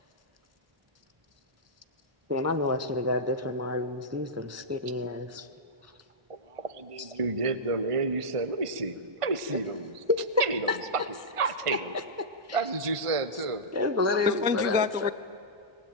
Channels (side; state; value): left; late; 1.5 ms